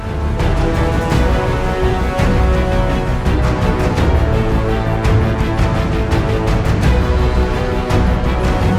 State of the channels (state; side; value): identical; both; correlation 1.00